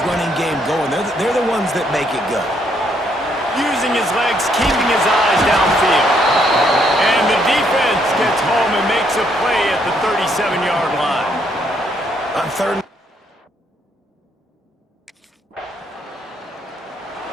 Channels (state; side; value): normal; both; correlation 0.71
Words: running game going. They're the ones that make it go. Using his legs, keeping his eyes downfield. And the defense gets home and makes a play at the 37-yard line. On 3rd.